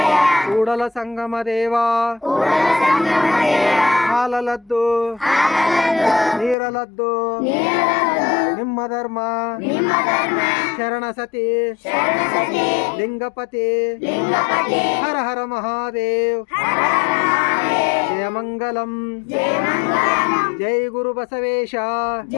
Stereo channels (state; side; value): drops out; right; at 6.6 s